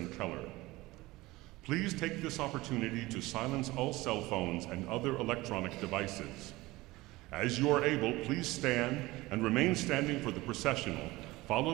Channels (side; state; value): left; quieter; 19.9 dB